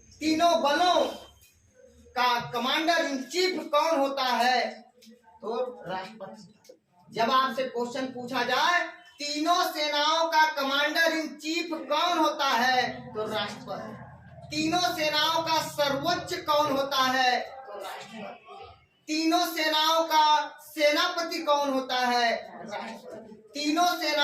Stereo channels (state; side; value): identical; both; correlation 1.00